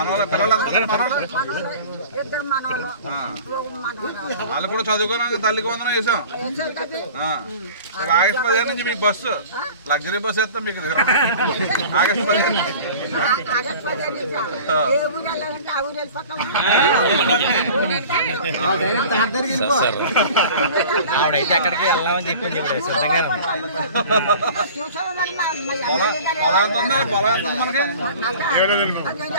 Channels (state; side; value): inverted; both; correlation -0.42